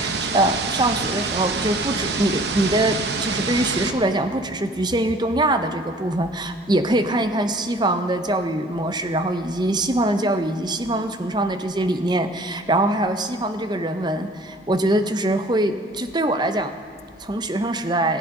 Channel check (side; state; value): both; normal; correlation 0.50